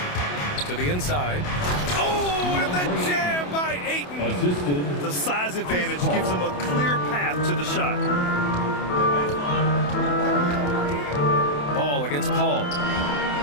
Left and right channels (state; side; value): late; right; 28 ms